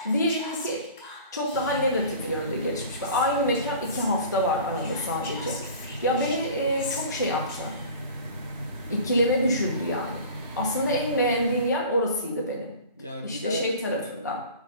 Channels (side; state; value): both; inverted; correlation -0.41